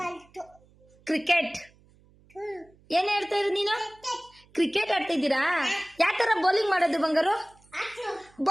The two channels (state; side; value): noise; right; hum, 30 dB below the sound